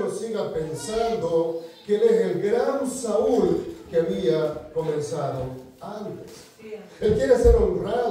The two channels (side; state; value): both; identical; correlation 1.00